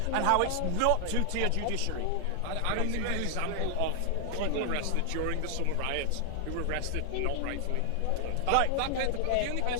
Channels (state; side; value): different; both; correlation 0.00